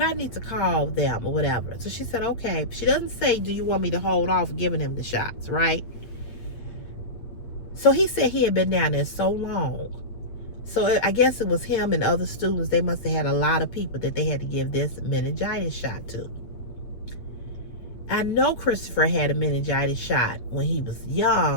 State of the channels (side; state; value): right; late; 8.6 ms